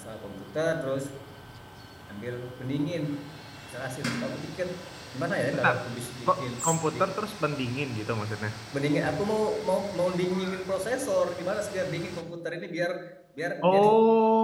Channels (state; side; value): identical; both; correlation 1.00